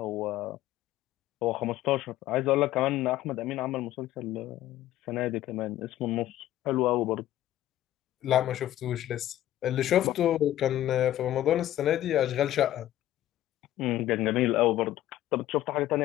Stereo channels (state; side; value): quieter; right; 13.6 dB